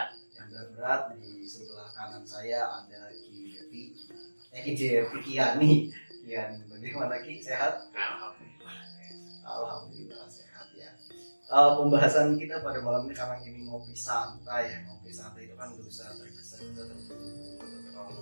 Yang berat-berat. Di sebelah kanan saya ada Ki Devi. Ki Devi Kiani. Kian, bagaimana Ki? Sehat? Alhamdulillah sehat ya. Pembahasan kita pada malam ini karena ini ngopi santai ya. Ngopi santai itu kan gak usah tergesa atau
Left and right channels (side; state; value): both; inverted; correlation -1.00